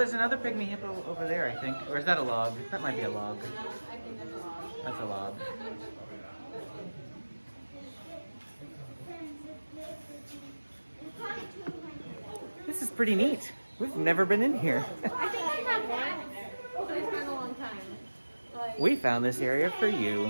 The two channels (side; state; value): both; inverted; correlation -1.00